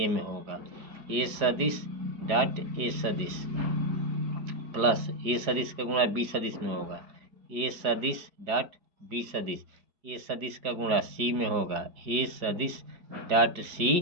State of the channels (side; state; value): left; late; 4.8 ms